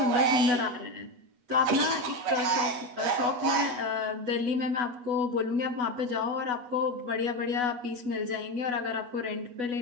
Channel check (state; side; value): late; left; 8.2 ms